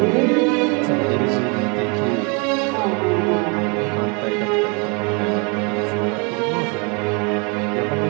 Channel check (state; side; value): quieter; left; 32.7 dB